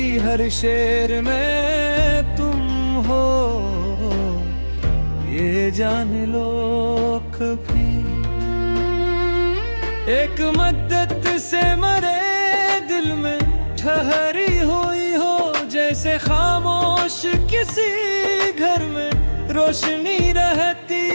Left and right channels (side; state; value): both; inverted; correlation -1.00